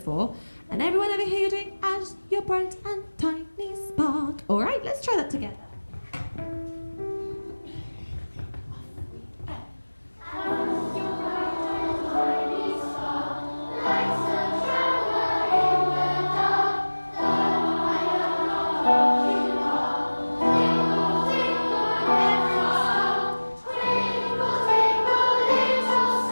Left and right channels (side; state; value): both; inverted; correlation -1.00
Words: And everyone over here, you're doing As Your Bright and Tiny Spark. All right, let's try that together.